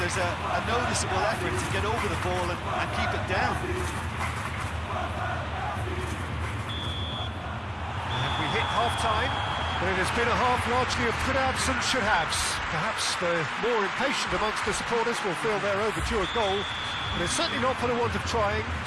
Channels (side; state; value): both; identical; correlation 1.00